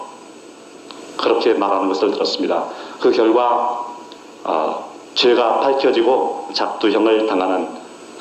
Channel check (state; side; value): identical; both; correlation 1.00